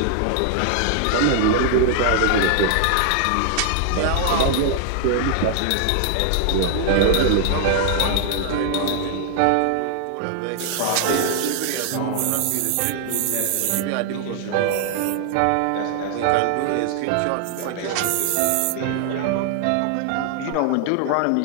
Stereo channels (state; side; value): different; both; correlation 0.00